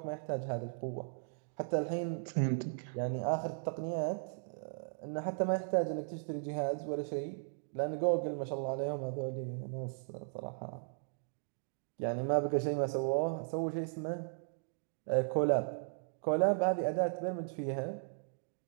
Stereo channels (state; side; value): silent; left; digital silence